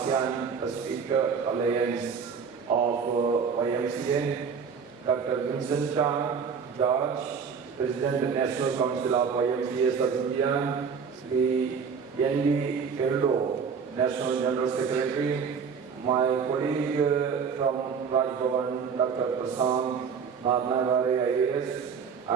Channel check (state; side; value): quieter; left; 6.2 dB